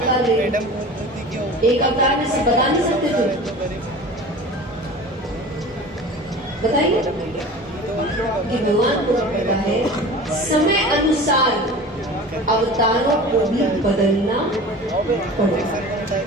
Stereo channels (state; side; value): normal; both; correlation 0.37